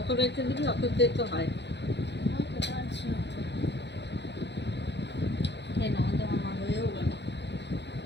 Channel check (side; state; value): right; late; 0.50 ms